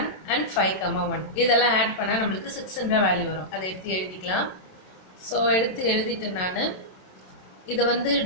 and 5, 1. இதெல்லாம் ஆட் பண்ணா நம்மளுக்கு 6 என்ற வேல்யூ வரும். அதை எடுத்து எழுதிக்கலாம். ஸோ எடுத்து எழுதிட்டு நான் இதை வந்து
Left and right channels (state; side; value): late; right; 27 ms